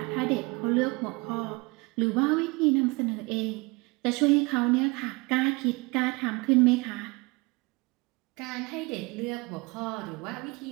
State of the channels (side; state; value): left; quieter; 26.4 dB